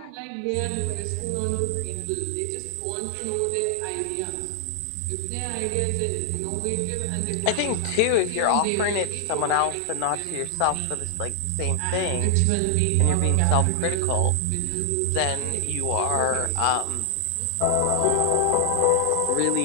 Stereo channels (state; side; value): different; both; correlation 0.00